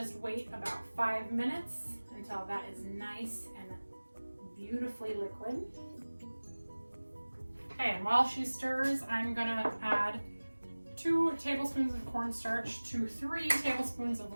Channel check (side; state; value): both; inverted; correlation -1.00